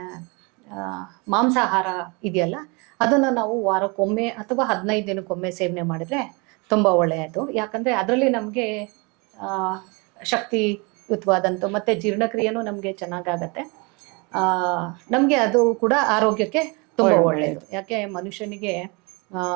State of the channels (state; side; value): quieter; left; 29.4 dB